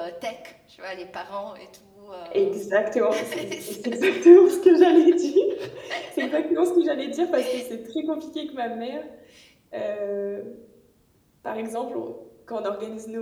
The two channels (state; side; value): identical; both; correlation 1.00